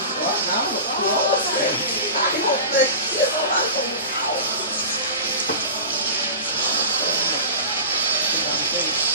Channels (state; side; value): inverted; both; correlation -0.32